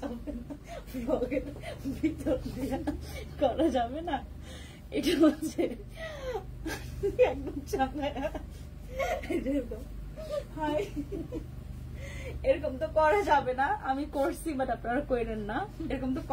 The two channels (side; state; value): both; identical; correlation 1.00